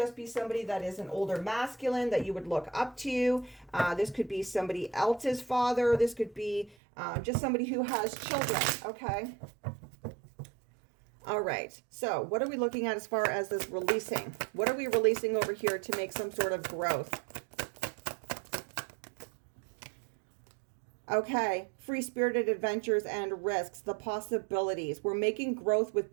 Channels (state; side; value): drops out; left; at 6.8 s